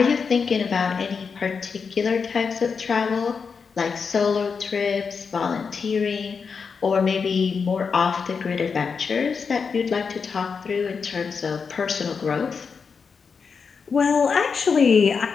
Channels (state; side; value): quieter; right; 5.6 dB